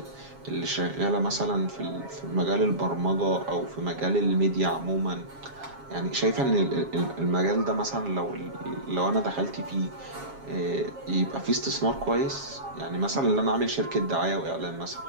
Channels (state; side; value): late; left; 7.3 ms